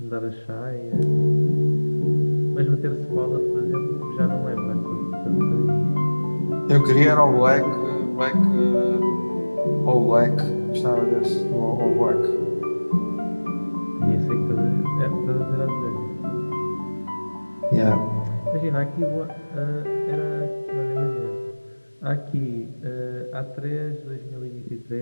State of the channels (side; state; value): both; inverted; correlation -1.00